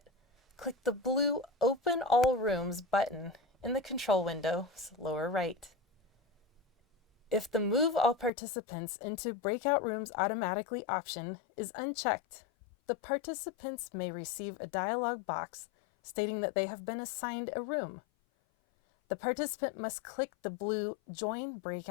click the blue Open All Rooms button in the control window's lower right. If the Move All Participants into Breakout Rooms Automatically option is unchecked, the participants may receive a dialog box stating that they have been assigned a room. The participant must click the blue Join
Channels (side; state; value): right; drops out; at 8.3 s